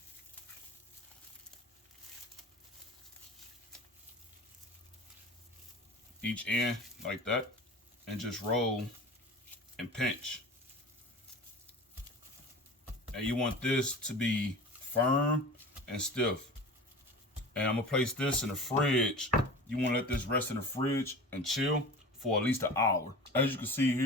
Each end like that, and just roll and pinch. And you want this to be firm and stiff. And I'm gonna place this in the fridge. You wanna let this rest in the fridge and chill for at least an hour. As you can see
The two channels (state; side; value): normal; both; correlation 0.36